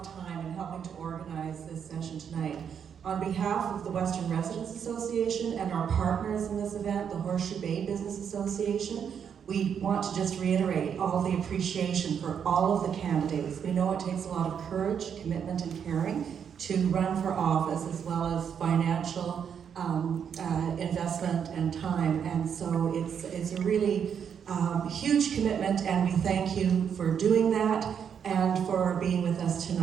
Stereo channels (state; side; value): quieter; left; 7.7 dB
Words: time in helping to organize this session tonight. On behalf of the Western Residents Association and our partners in this event, the Horseshoe Bay Business Association, we want to just reiterate all the appreciation for all of the candidates. We know it takes a lot of courage, commitment, and caring to run for office, as well as financial investment and time. And so it's a really huge commitment, and we thank you for doing that and for being with us